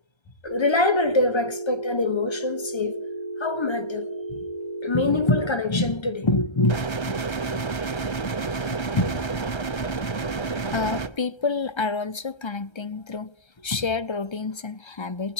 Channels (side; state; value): right; late; 1.3 ms